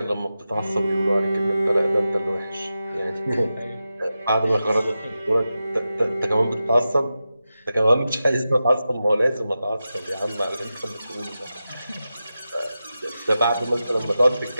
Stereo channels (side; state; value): both; inverted; correlation -0.92